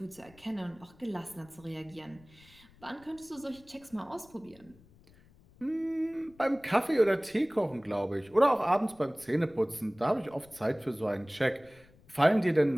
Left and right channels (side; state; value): left; noise; rumble, 26 dB below the sound